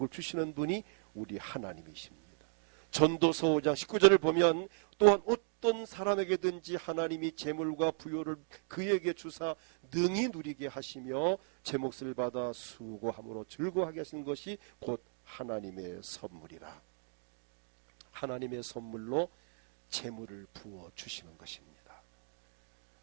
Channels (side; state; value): left; silent; 53 dB below the other